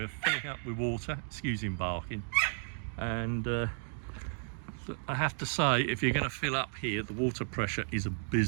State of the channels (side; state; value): left; silent; digital silence